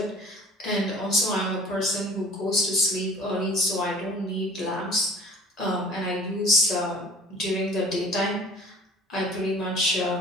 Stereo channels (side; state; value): both; normal; correlation 0.47